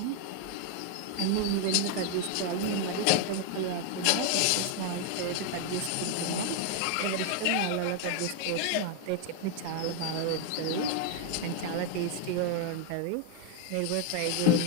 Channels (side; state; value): both; different; correlation 0.01